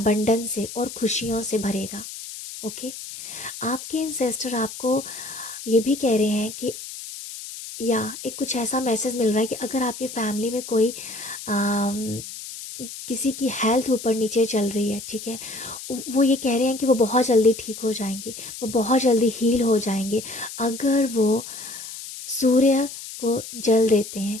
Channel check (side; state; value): left; noise; hiss, 11 dB below the sound